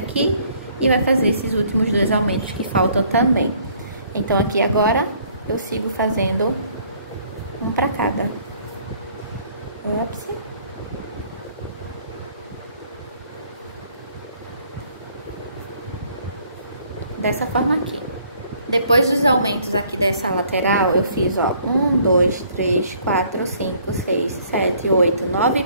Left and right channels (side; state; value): both; inverted; correlation -0.61